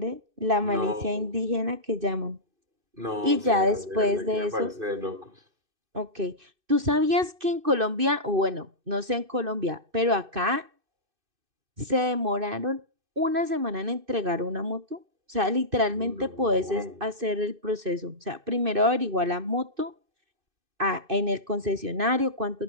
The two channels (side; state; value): left; late; 2.6 ms